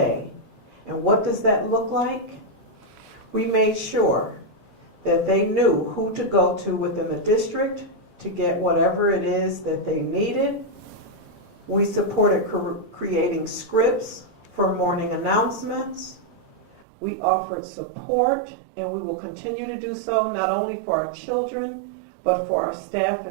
And what does that look like? We made sure that they knew who to go to within the district to get whatever it is that they needed. We supported creating scripts for morning announcements. We offered support, and we will continue to do so not only for our children, but for our staff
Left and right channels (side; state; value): left; drops out; at 16.9 s